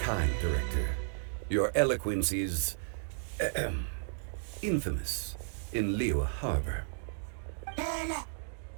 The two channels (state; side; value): silent; left; digital silence